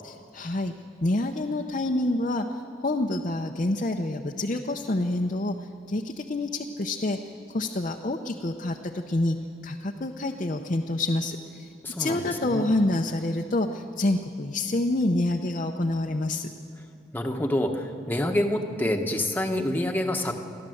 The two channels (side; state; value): both; normal; correlation 0.72